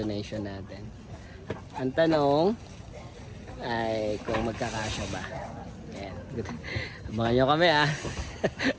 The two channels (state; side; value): identical; both; correlation 1.00